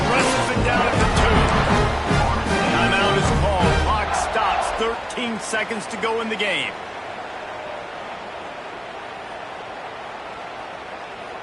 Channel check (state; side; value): identical; both; correlation 1.00